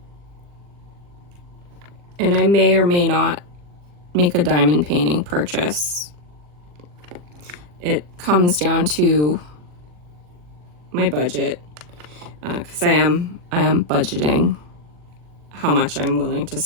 And I may or may not make a diamond painting purchase. It comes down to my budget, because I am budgeting how much I'm willing to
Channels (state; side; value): late; left; 40 ms